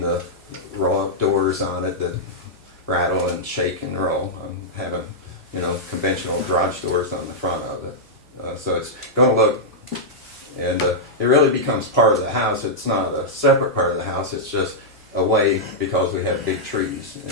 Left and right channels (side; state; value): both; normal; correlation -0.08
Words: the roll-up doors on it that rattle and shake and roll. I'm having, conventional garage doors on the front of it, so it's gonna look, and it really becomes part of the house. It's not a separate part of the house, it's just a way, because we have big trees